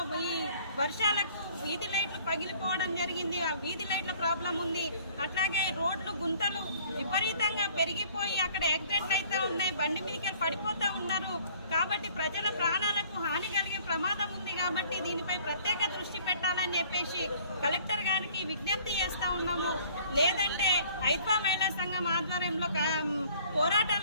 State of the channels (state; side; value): inverted; both; correlation -0.55